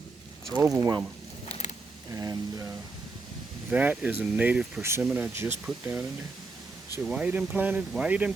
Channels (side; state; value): left; quieter; 3.8 dB